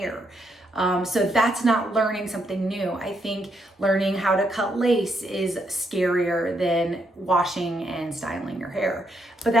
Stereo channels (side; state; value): both; normal; correlation 0.77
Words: So that's not learning something new. I think learning how to cut lace is scarier than washing and styling your hair. But